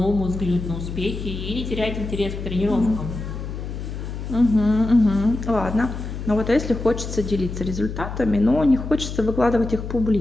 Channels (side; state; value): left; noise; hum, 7 dB below the sound